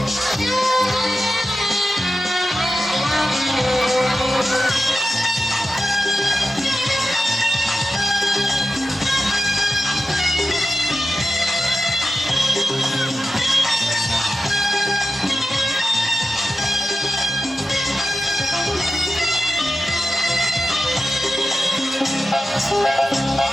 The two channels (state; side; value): normal; both; correlation 0.92